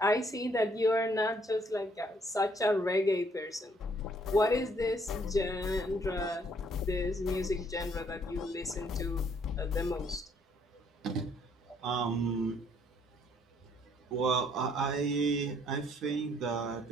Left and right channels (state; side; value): normal; both; correlation 0.66